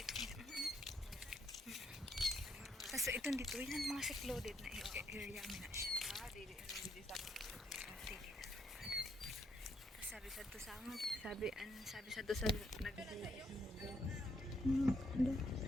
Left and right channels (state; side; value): normal; both; correlation 0.73